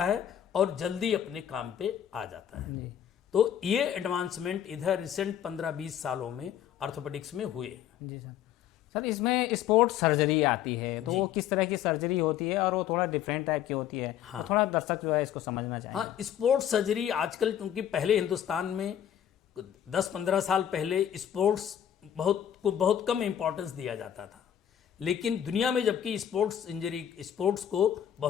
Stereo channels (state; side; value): quieter; right; 10.1 dB